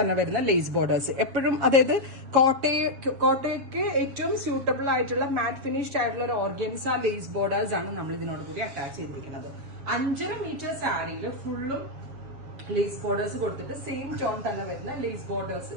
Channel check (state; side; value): late; left; 7.4 ms